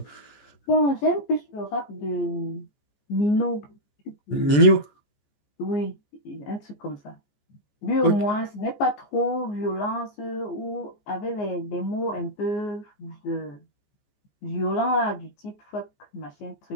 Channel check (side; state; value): right; late; 14 ms